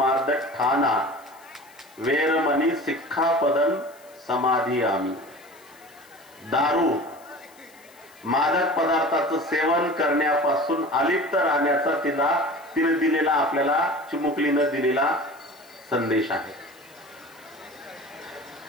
ठाना वेरमणी सिक्खापदन समाधी आम्ही। दारू, मादक पदार्थाचं सेवन करण्यापासून अलिप्त राहण्याचा तिने दिलेला, आपल्याला चिमुकलीनं दिलेला संदेश आहे।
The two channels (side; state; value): left; noise; hiss, 26 dB below the sound